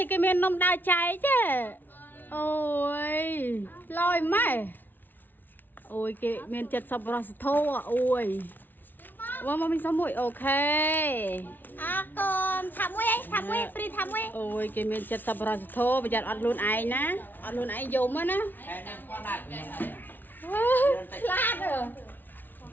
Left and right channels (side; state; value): right; late; 0.089 ms